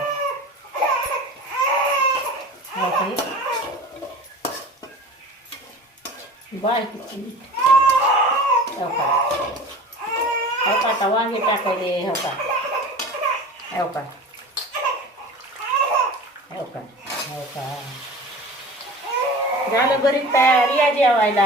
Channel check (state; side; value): normal; both; correlation 0.38